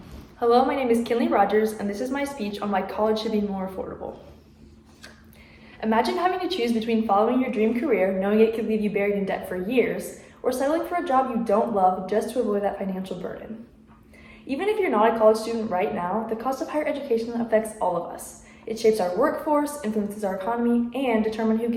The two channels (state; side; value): identical; both; correlation 1.00